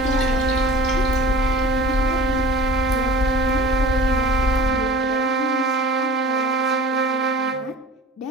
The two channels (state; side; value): normal; both; correlation 0.42